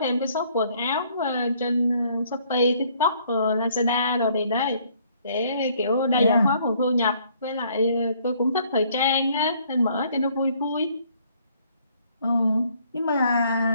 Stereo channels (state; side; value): inverted; both; correlation -0.63